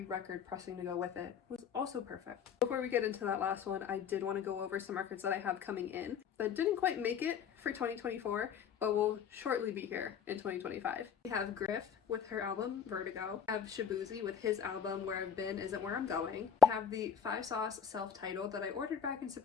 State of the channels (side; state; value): right; quieter; 7.7 dB